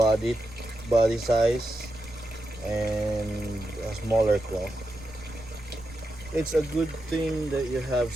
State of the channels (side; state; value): right; noise; rumble, 18 dB below the sound